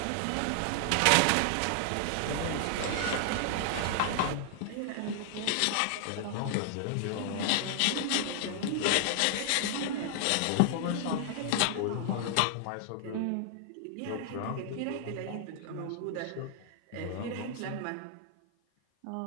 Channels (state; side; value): different; both; correlation -0.01